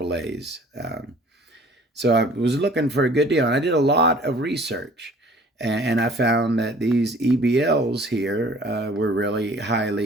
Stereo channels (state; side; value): normal; both; correlation 0.51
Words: So I was looking for a good deal, and I did a lot of research. And I found that these EBLs here were really